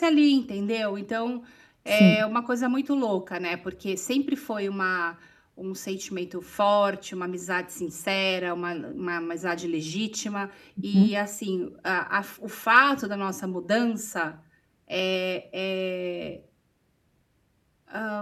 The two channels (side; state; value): both; identical; correlation 1.00